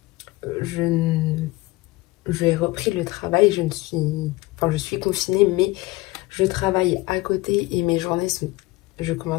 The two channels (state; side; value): quieter; right; 20.2 dB